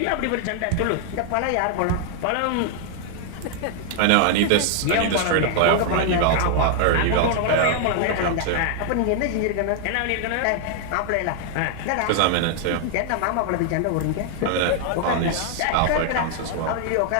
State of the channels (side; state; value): both; different; correlation 0.00